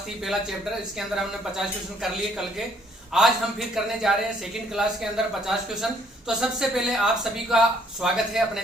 थी पहला चैप्टर, इसके अंदर हमने 50 क्वेश्चन कर लिए कल के। आज हम फिर करने जा रहे हैं सेकंड क्लास के अंदर 50 क्वेश्चन। तो सबसे पहले आप सभी का स्वागत है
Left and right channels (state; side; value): normal; both; correlation 0.64